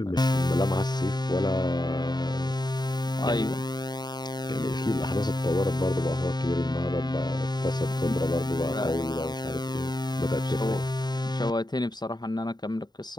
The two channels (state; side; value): late; right; 0.20 ms